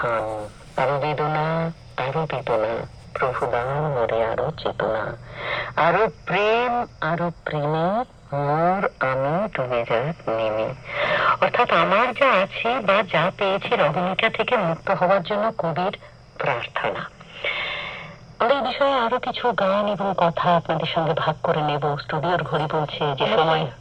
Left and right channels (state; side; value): identical; both; correlation 1.00